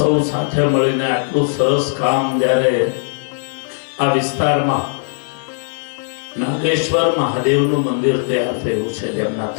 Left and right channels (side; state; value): right; silent; digital silence